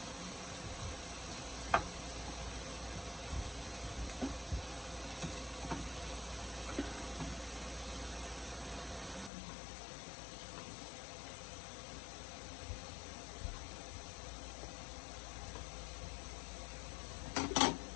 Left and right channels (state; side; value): drops out; right; at 9.3 s